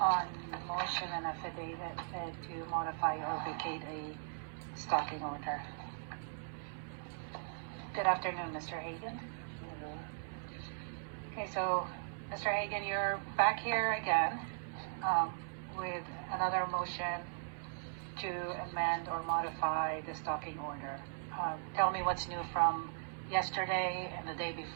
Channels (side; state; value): left; silent; 52 dB below the other